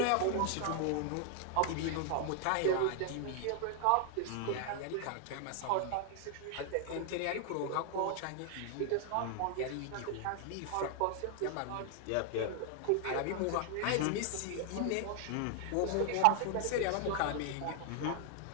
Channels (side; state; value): both; different; correlation 0.00